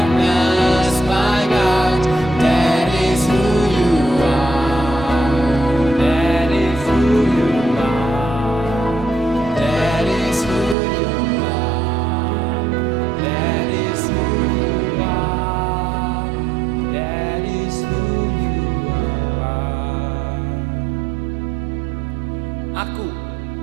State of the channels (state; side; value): drops out; left; at 10.8 s